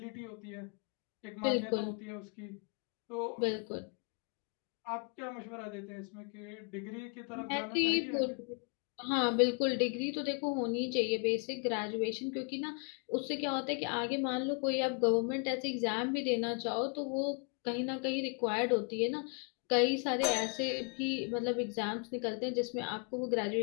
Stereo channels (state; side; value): quieter; right; 35.8 dB